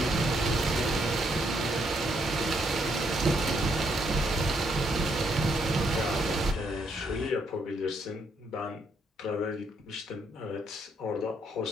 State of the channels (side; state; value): both; normal; correlation 0.74